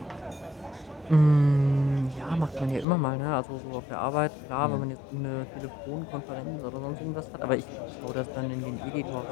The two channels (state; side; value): drops out; right; at 2.9 s